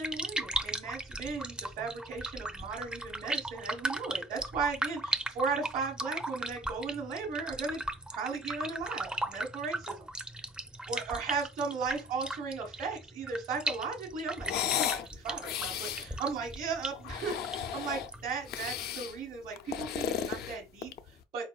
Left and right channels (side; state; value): both; normal; correlation 0.46